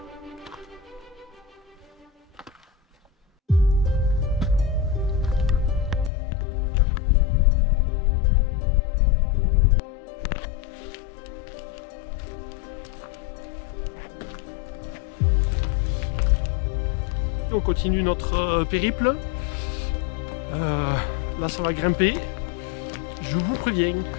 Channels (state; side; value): drops out; right; at 6.1 s